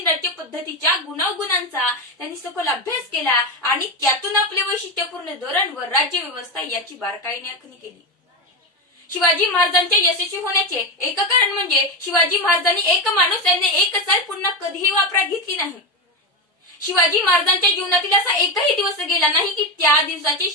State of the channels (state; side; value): normal; both; correlation 0.15